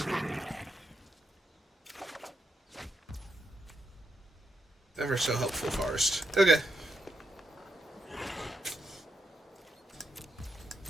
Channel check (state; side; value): normal; both; correlation 0.82